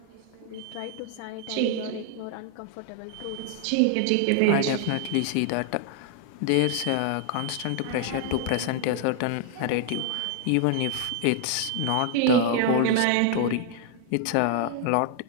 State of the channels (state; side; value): different; both; correlation 0.00